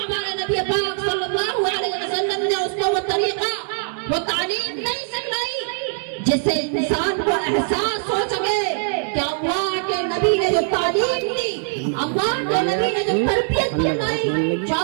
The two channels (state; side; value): silent; left; 60 dB below the other